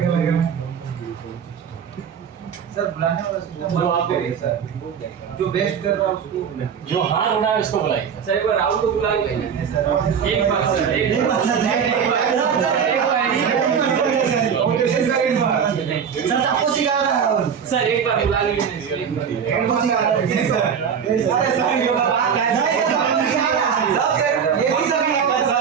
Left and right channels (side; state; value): left; quieter; 7.3 dB